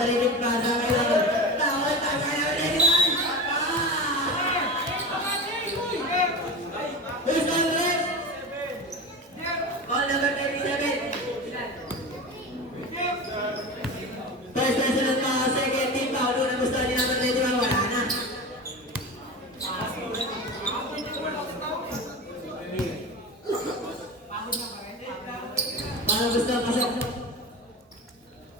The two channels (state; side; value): normal; both; correlation 0.28